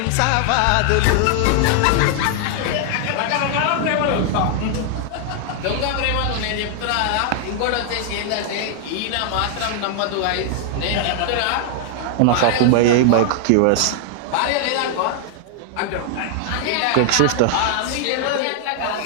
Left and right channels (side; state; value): both; different; correlation 0.00